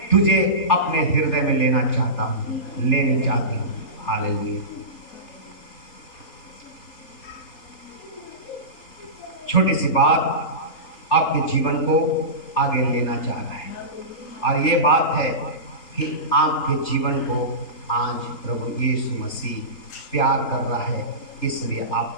तुझे अपने हृदय में लेना चाहता हूँ, लेनी चाहती हूँ। हालेलुया। छोटी सी बात आपके जीवन को आगे लेना चाह रहा है, और ये बात है कि आपके जीवन को आज प्रभु यीशु मसीह प्यार कर रहा है, इसलिए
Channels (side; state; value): right; late; 3.4 ms